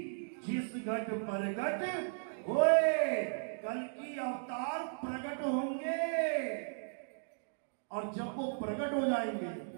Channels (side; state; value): left; silent; digital silence